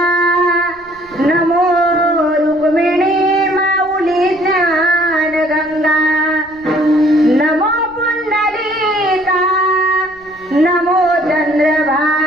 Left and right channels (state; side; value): noise; right; rumble, 28 dB below the sound